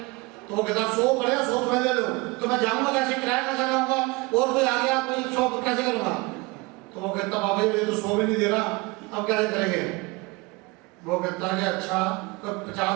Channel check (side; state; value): left; quieter; 24.7 dB